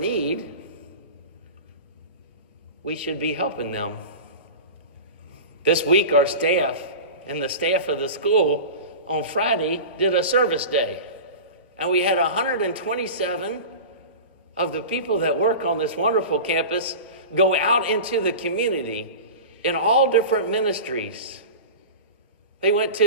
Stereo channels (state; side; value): inverted; both; correlation -0.31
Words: we should be helping them. This week, our staff and the staff of the school on Friday did a service day. And we had 127 of the people that work on this wonderful campus go out into the community in all different ministries. They went